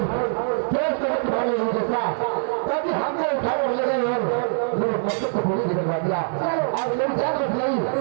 तेज तरह तुम्हारे नहीं जैसा कभी हमने उठा कर ले गए और मेरे मकसद को बोली निकलवा दिया और मेरी जान बच गई।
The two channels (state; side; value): silent; left; 63 dB below the other